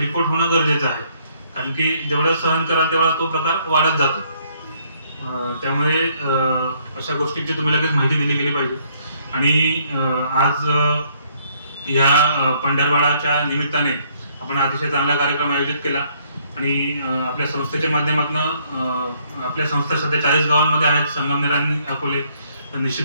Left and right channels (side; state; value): both; inverted; correlation -0.67